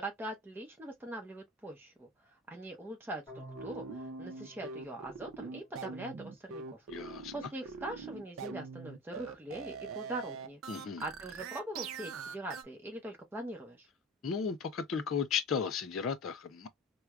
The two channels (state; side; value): normal; both; correlation 0.34